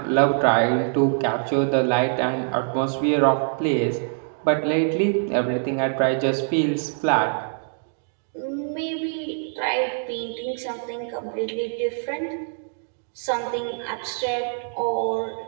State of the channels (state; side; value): silent; left; digital silence